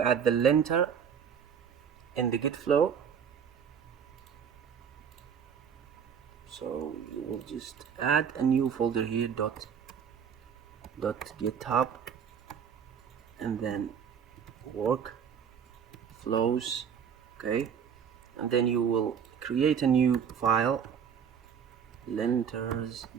add the linter in the git flow. So you will just add a new folder here, .github, and then work flows. Okay, and then you will create a new file,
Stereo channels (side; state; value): left; quieter; 7.5 dB